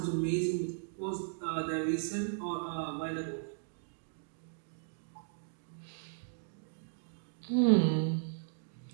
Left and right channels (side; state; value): left; silent; digital silence